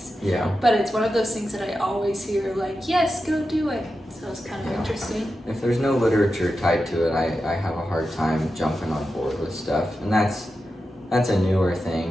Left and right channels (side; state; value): both; normal; correlation 0.90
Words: yeah, But it's one of those things that I always hear like, yes, go do it. So it's kind of interesting. if there's no literature tied to it, I have a hard time jumping on board with stuff, and that's a newer